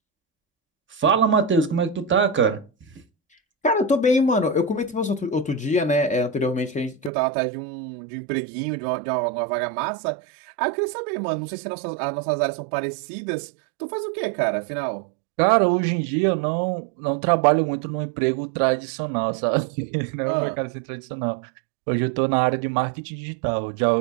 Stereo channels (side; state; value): left; drops out; at 7.1 s